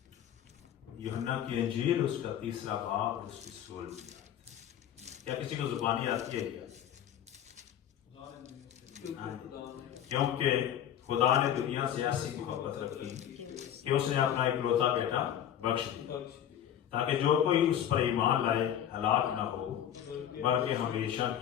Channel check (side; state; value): right; quieter; 10.3 dB